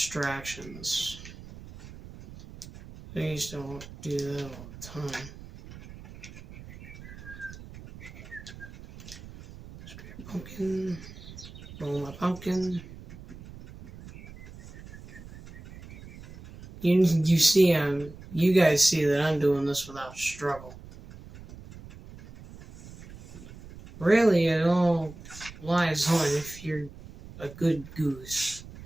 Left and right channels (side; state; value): right; noise; rumble, 16 dB below the sound